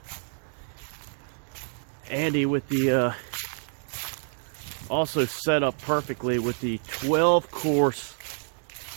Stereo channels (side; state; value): left; silent; digital silence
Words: Andy with the also set up perfectly with the 12-course